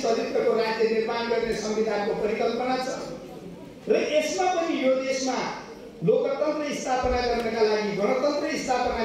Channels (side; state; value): both; identical; correlation 1.00